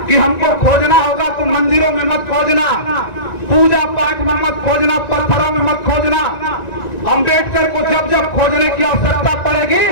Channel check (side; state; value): right; late; 1.9 ms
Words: कि हमको खोजना होगा तो मंदिरों में मत खोजना, पूजा पाठ में मत खोजना, पत्थरों में मत खोजना। अम्बेडकर को जब जब खोजने की आवश्यकता